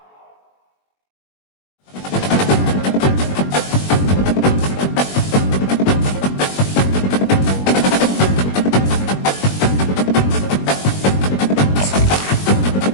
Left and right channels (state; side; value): late; right; 21 ms